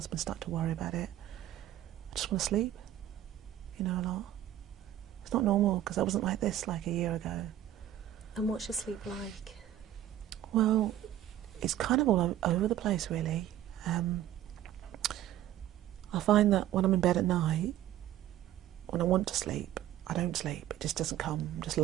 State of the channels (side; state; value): left; quieter; 12.3 dB